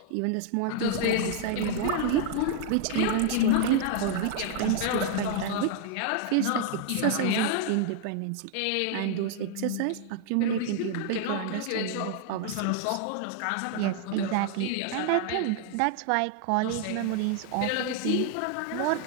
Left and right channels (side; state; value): both; different; correlation 0.00